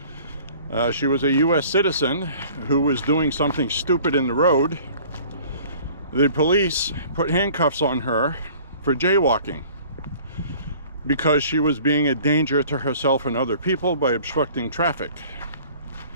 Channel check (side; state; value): both; inverted; correlation -0.50